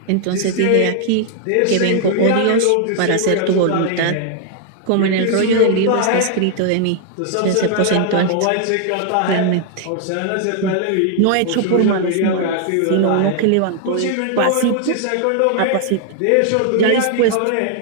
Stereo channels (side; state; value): both; different; correlation 0.00